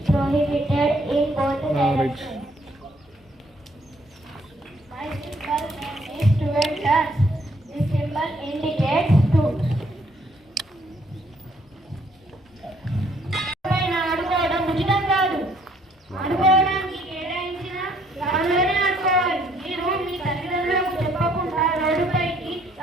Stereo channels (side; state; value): both; normal; correlation 0.66